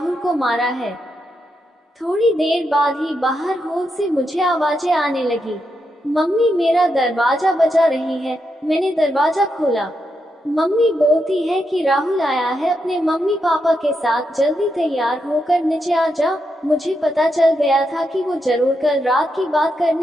को मारा है। थोड़ी देर बाद ही बाहर हॉल से मुझे आवाजें आने लगी। मम्मी मेरा दरवाजा बजा रही है। मैंने दरवाजा खोला। मम्मी बोलती है कि राहुल आया है अपने मम्मी पापा के साथ, जल्दी तैयार होकर नीचे आ जा। मुझे पता चल गया था कि वो जरूर कल रात की बात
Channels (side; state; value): both; normal; correlation 0.83